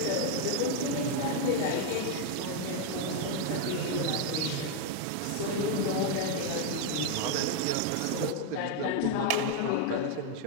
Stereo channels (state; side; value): different; both; correlation 0.01